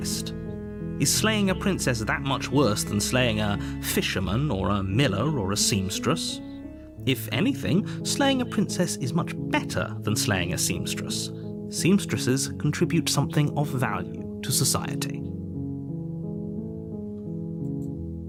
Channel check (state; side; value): identical; both; correlation 1.00